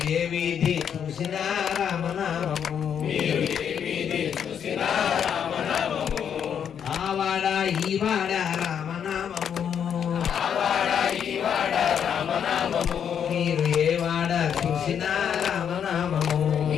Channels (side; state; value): right; quieter; 8.2 dB